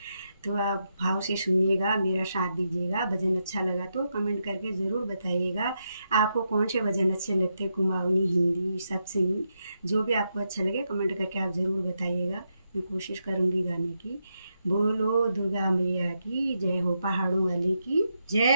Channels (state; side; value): inverted; both; correlation -0.84